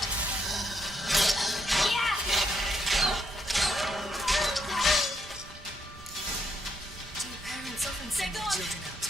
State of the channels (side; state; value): right; noise; rumble, 18 dB below the sound